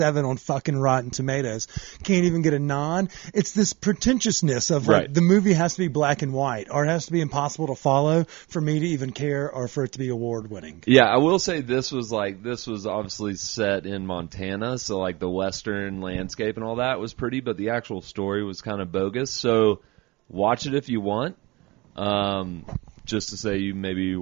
on fucking Rotten Tomatoes, can't even get a nod. It's this pretentiousness of like the movie has to be black and white, or it has to be impossible to follow for me to even care, or for it to be award-winning. Yeah, I will say this was obviously set in Montana, so like the western landscape and all that was pretty, but the actual story was kind of bogus. So watch it if you want. Just to say, you maybe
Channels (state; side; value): quieter; left; 22.7 dB